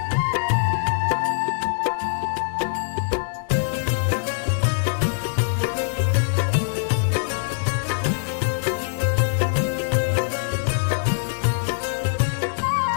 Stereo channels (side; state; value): right; silent; digital silence